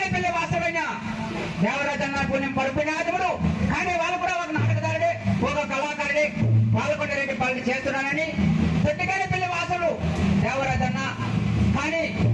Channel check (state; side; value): identical; both; correlation 1.00